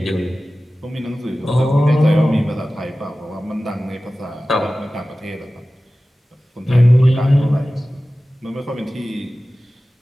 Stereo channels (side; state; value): both; normal; correlation 0.96